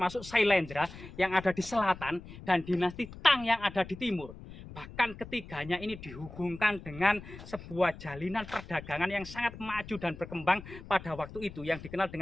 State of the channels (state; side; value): noise; left; rumble, 15 dB below the sound